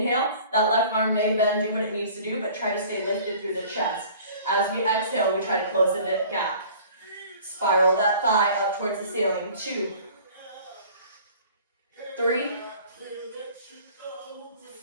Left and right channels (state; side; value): inverted; both; correlation -0.48